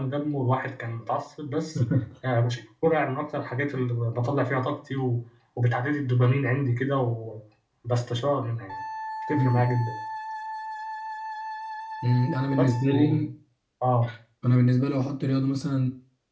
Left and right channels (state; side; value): identical; both; correlation 1.00